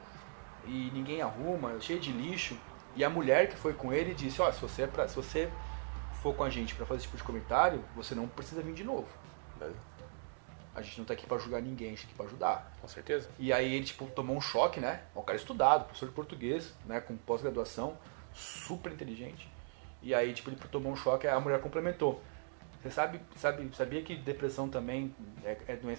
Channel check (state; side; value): silent; left; digital silence